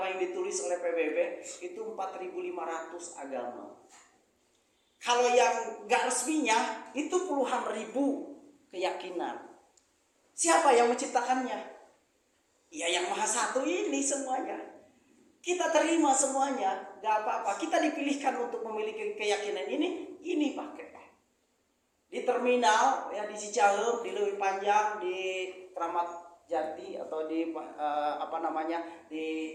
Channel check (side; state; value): both; identical; correlation 1.00